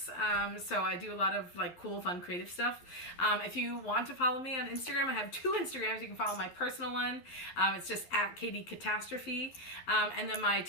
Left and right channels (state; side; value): late; right; 11 ms